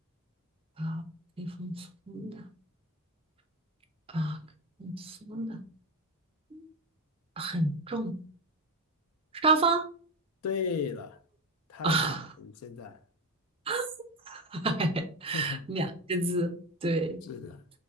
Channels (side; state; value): both; normal; correlation 0.18